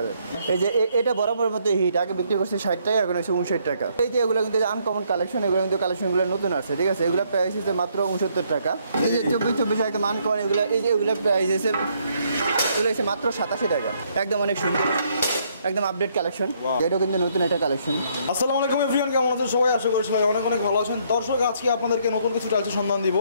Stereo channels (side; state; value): both; inverted; correlation -0.70